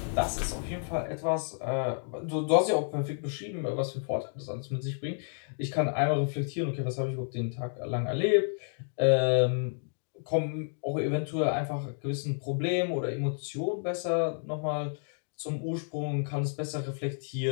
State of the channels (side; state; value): right; silent; digital silence